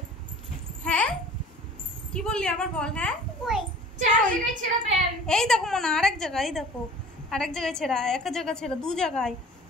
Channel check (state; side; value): normal; both; correlation 0.45